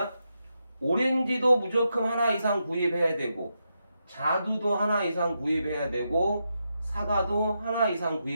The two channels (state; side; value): inverted; both; correlation -0.84